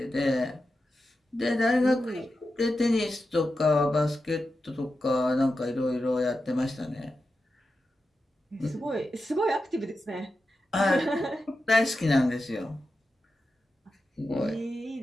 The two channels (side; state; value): both; normal; correlation 0.90